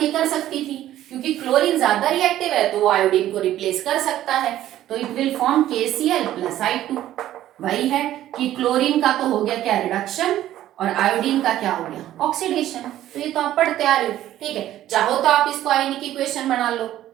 ये कर सकती थी, क्योंकि क्लोरीन ज्यादा रिएक्टिव है तो वो आयोडीन को रिप्लेस कर सकता है। तो it will form KCl plus I2। वही है कि क्लोरीन का तो हो गया क्या? रिडक्शन। और आयोडीन का क्या हो गया? ऑक्सीडेशन। तो ये तो आप पढ़ते आ रहे हो। ठीक है। चाहो तो आप इसको आयनिक इक्वेशन बना लो,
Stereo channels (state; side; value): quieter; left; 13.1 dB